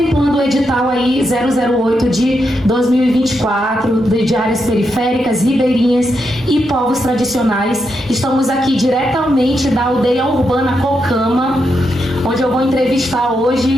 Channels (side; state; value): both; normal; correlation 0.83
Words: o edital aí 008 de 2024, de áreas periféricas, ribeirinhas e povos tradicionais. Estamos aqui diretamente da aldeia urbana Cocama, onde eu vou entrevistar